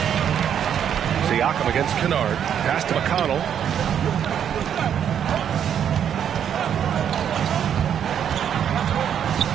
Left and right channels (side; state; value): left; quieter; 8.9 dB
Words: Siakam against Kennard. Pass to McConnell.